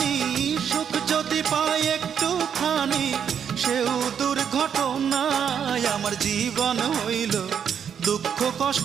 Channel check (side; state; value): left; quieter; 7.9 dB